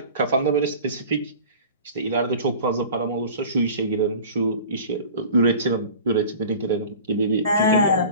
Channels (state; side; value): inverted; both; correlation -0.41